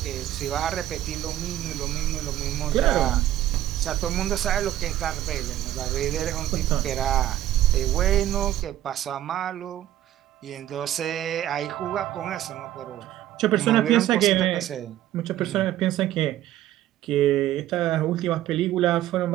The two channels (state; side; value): quieter; left; 13.1 dB